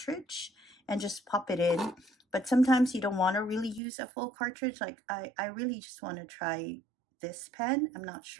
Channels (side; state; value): left; drops out; at 3.8 s